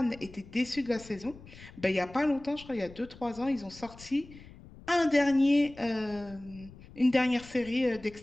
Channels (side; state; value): left; noise; rumble, 19 dB below the sound